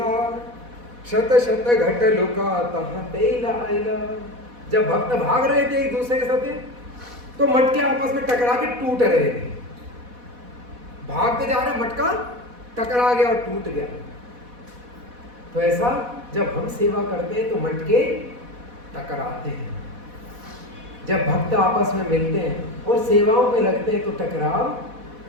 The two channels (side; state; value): left; late; 4.1 ms